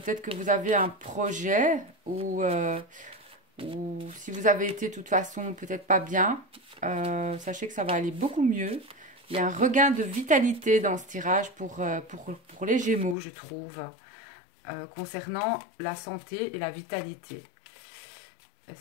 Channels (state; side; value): drops out; right; at 13.2 s